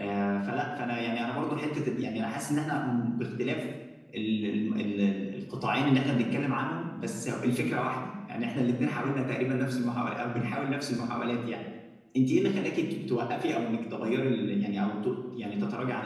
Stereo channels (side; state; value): both; identical; correlation 1.00